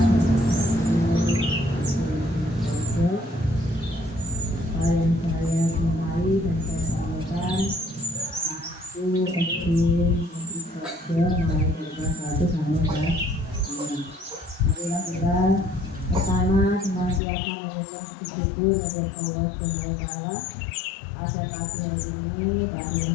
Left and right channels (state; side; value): drops out; right; at 17.2 s